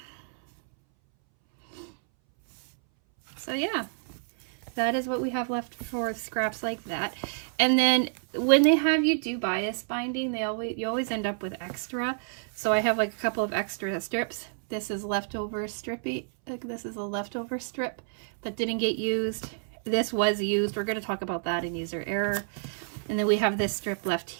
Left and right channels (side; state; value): left; silent; 59 dB below the other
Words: So yeah, that is what we have left for scraps like that. And then when they have you do bias binding, you always end up with extra. So I have like a couple of extra strips. This is leftover strippy, like this is a leftover strip that didn't get used. This was used. We're going to talk about that in user error. And then we have this strip left